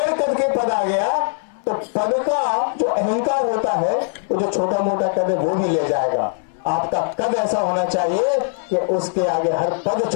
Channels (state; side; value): silent; right; 65 dB below the other